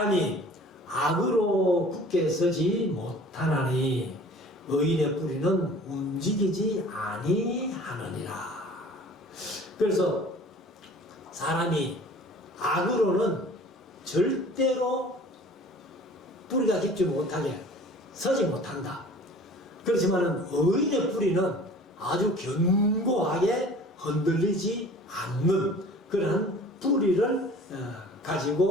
악으로 굳게 서지 못하나니 의인의 뿌리는 움직이지 아니하느니라. 그래서 사람이 악으로는 절대로 뿌리가 깊지 못하게 서지 못한다. 그렇지만 의인의 뿌리는 아주 견고하게 흔들리지 않는 그런 뿌리를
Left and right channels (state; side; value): normal; both; correlation 0.46